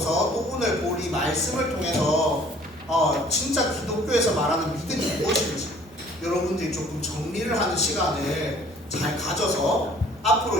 또 오늘 볼 이 말씀을 통해서 진짜 기독교에서 말하는 믿음이 무엇인지 여러분들이 조금 정리를 하는 시간을 잘 가져서 앞으로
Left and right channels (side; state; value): both; normal; correlation 0.55